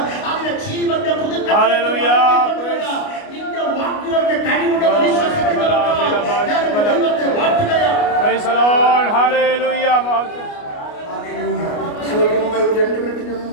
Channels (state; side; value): late; right; 29 ms